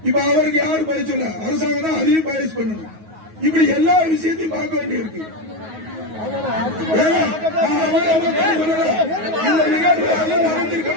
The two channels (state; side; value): late; left; 9.4 ms